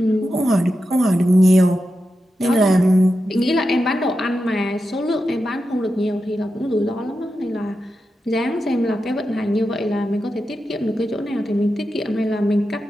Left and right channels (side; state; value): both; normal; correlation 0.89